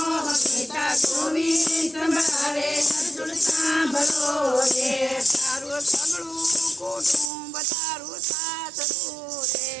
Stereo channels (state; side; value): drops out; left; at 7.3 s